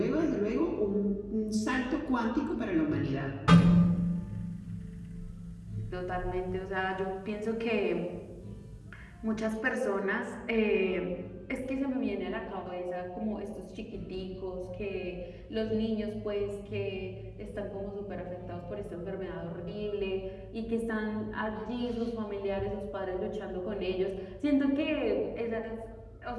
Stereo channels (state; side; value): identical; both; correlation 1.00